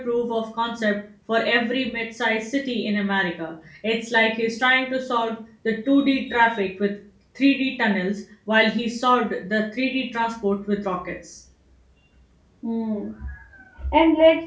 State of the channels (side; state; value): both; identical; correlation 1.00